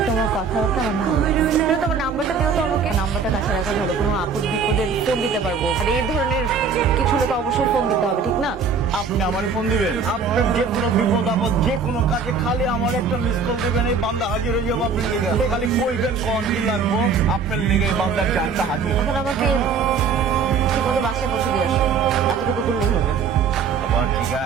তোমার কথাবার্তা আমার ভালো লাগছে তুমি তোমার নাম্বারটা দিও তো আমাকে নাম্বারটা কাছে রাখা ভালো কোনো আপদ বিপদে ফোন দিতে পারবো আর এই ধরনের কিছু হলে তো অবশ্যই ফোন দিতে হবে ঠিক না আপনি আমারে ফোন দিবেন আপনার যে কোনো বিপদ আপদ যে কোনো কাজে খালি আমার একটা মিস কল দিবেন এই বান্দা হাজির হয়ে যাবো আপনার লিগে খালি কইবেন কোন কি লাগবো আপনার লিগে এই বান্দার জানটা হাজির এখন আমাকে ঠিক মতো বাসায় পৌঁছে দিয়ে আসো এতটুকু করলেই হবে আবার ঠিক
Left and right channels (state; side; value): quieter; left; 5.5 dB